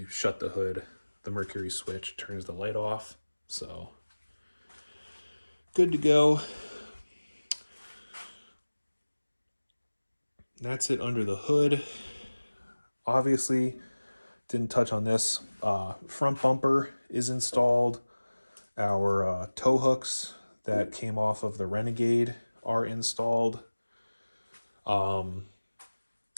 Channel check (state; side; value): inverted; both; correlation -1.00